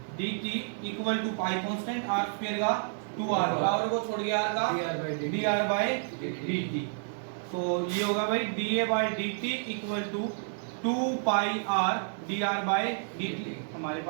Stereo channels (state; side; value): silent; left; digital silence